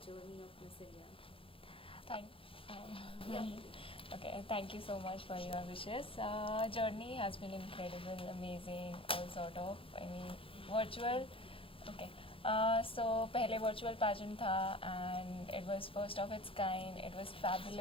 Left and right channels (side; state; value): right; late; 0.26 ms